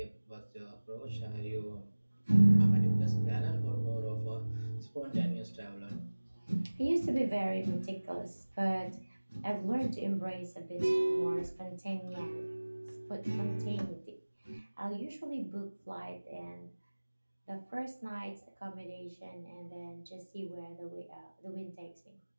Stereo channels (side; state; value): both; inverted; correlation -1.00